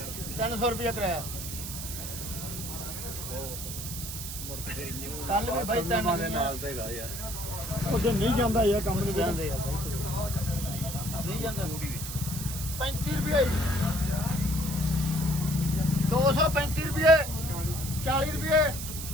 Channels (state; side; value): noise; right; hiss, 7 dB below the sound